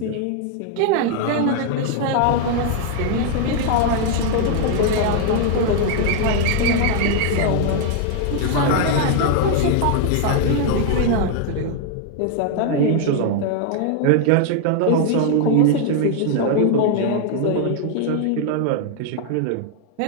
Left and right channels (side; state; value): both; different; correlation 0.00